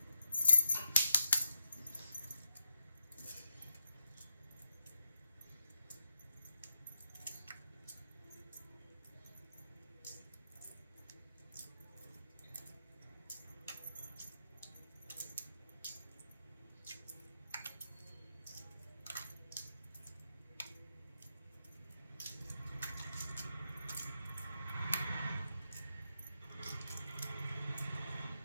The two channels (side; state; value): both; inverted; correlation -0.83